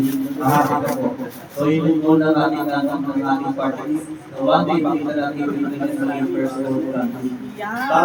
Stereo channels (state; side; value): identical; both; correlation 1.00